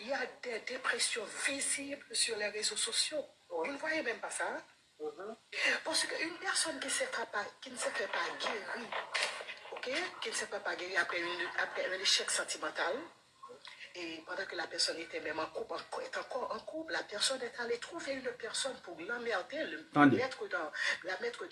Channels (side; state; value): both; identical; correlation 1.00